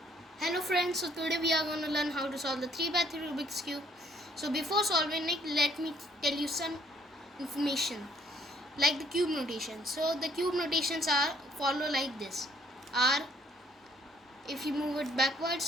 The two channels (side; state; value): both; normal; correlation 0.64